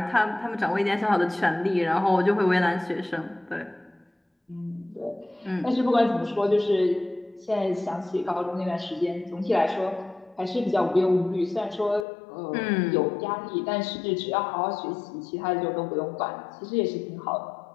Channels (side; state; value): right; drops out; at 12.1 s